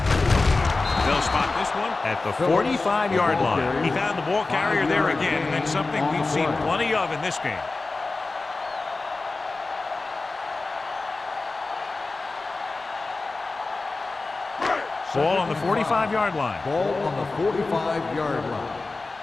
They'll spot this one at the 45-yard line. He found the ball carrier there again, and that's something we've seen plenty of in this game. Ball on the 45-yard line. Ball on the 45-yard line.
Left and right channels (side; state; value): right; quieter; 3.5 dB